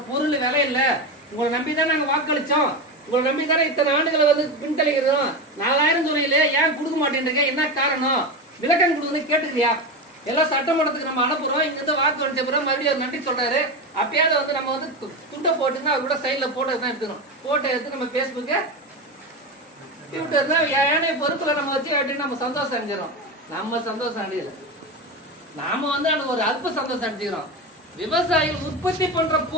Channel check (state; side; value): normal; both; correlation 0.19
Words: பொருள் விலை இல்ல. உங்களை நம்பிதான் நாங்க வாக்களிச்சோம். உங்களை நம்பிதானே இத்தனை ஆண்டுகளை வந்து பின்தளிக்கிறோம். 4000 சொன்னீங்களே, ஏன் கொடுக்க மாட்டேன்றீங்க? என்ன காரணம்? விளக்கம் கொடுக்கணும் கேட்டுக்கிறியா? எல்லாம் சட்டமன்றத்துக்கு நம்ம அனுப்புறோம். இங்க இருந்து வாக்கு அடிச்ச பிறகு மறுபடியும் அவர் நன்றி சொல்றாரு. அப்பயாவது வந்து நம்ம வந்து துண்டை போட்டுன்னா அவர் கூட சைட்ல போட்டோ தான் எடுத்துக்கணும். போட்டோ எடுத்து நம்ம பேஸ்புக்கு ட்விட்டர்னா ஏனைய பொறுப்புல நம்ம வச்சு அப்படின்னு நம்ம சந்தோஷம் அடைஞ்சிடறோம். நம்ம சந்தோஷம் அடையல. நாம வந்து அந்த ஒரு அல்ப சந்தோஷம் அடைஞ்சுக்கிறோம். விவசாயிகள் உற்பத்தி பண்ற